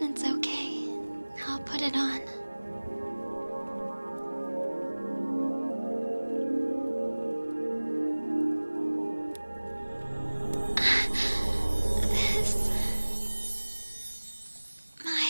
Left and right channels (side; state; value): both; inverted; correlation -1.00